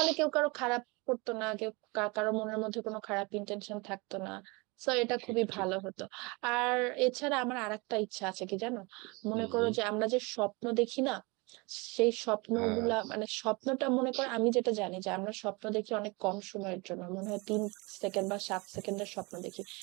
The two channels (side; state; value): left; quieter; 27.3 dB